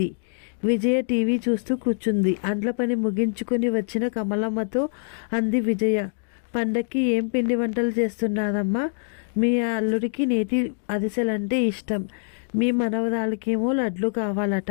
విజయ టీవీ చూస్తూ కూర్చుంది. అంట్ల పని ముగించుకొని వచ్చిన కమలమ్మతో అంది విజయ. పండక్కి ఏం పిండి వంటలు చేస్తున్నారమ్మా? మీ అల్లుడికి నేతి అరిసెలంటే ఇష్టం. మీ మనవరాలకేమో లడ్లు కావాలట.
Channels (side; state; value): right; silent; digital silence